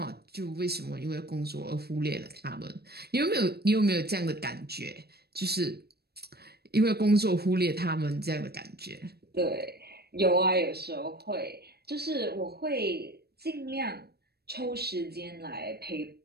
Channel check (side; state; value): left; late; 0.47 ms